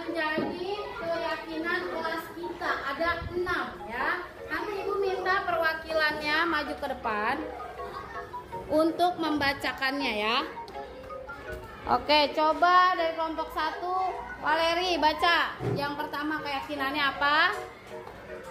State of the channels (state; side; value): identical; both; correlation 1.00